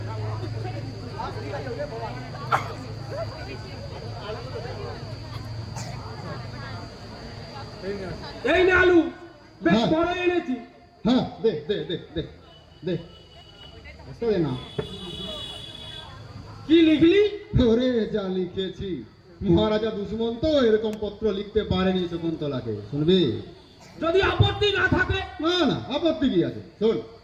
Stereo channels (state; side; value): identical; both; correlation 1.00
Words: এই না আলু, বেশ হ্যাঁ। বড় এনেছি। হ্যাঁ, দে দে দে দে দে। বুঝতে দে না। কি লিখলি? ওরে যা লিখেছি, মহারাজা দুশ্মন তো এরকম পত্র লিখতে পারেনি শকুন্তলাকে। শুনবি? যদি আপত্তি না থাকে? না না, আপত্তি কি আছে? শোন।